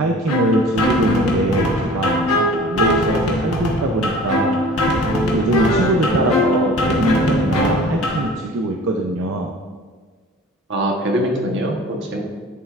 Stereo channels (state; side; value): normal; both; correlation 0.45